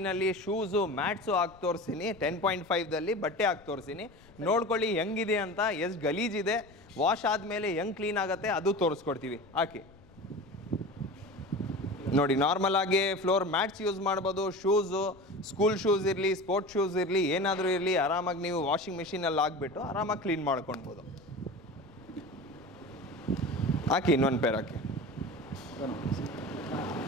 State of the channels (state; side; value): noise; left; rumble, 25 dB below the sound